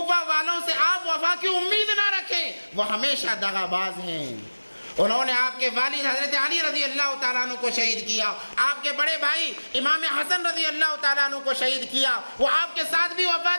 والوں سے آپ وفا کی امید نہ رکھیں، وہ ہمیشہ دغا باز ہیں۔ انہوں نے آپ کے والد حضرت علی رضی اللہ تعالیٰ عنہ کو شہید کیا، آپ کے بڑے بھائی امام حسن رضی اللہ تعالیٰ عنہ کو شہید کیا، وہ آپ کے ساتھ بھی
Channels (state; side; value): inverted; both; correlation -1.00